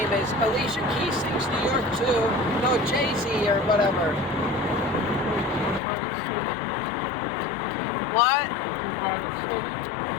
is. Alicia Keys sings New York too. No, Jay-Z or whatever. What? By the city.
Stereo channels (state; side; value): drops out; right; at 5.8 s